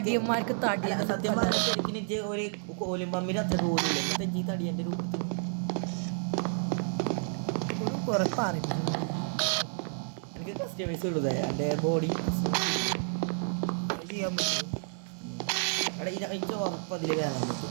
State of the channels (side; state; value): left; silent; 57 dB below the other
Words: തടി. സത്യം പറഞ്ഞാൽ ശരിക്കും ഒരു കോലും പമ്പിന് അത്ര പോലില്ല. ഈ തടി എൻ്റെ രൂപത്തിൽ കുറെ പറഞ്ഞു. എനിക്ക് കസ്റ്റമൈസ് ഉള്ളത് എൻ്റെ ബോഡി കയറാൻ പറ്റുമോ? അവിടെ എനിക്ക് ഉറപ്പ് അതിൽ കയറാൻ പറ്റും.